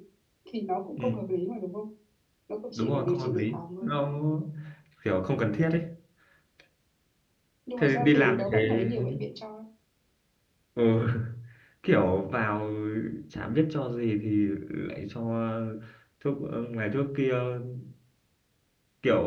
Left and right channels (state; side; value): identical; both; correlation 1.00